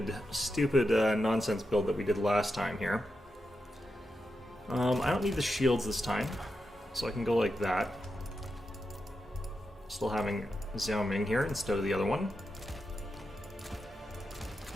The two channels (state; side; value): normal; both; correlation 0.87